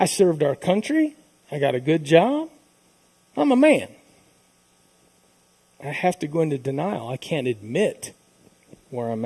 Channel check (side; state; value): both; identical; correlation 1.00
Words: served our country. I got a good job. I'm a man. I have to go into denial. I can't admit where I'm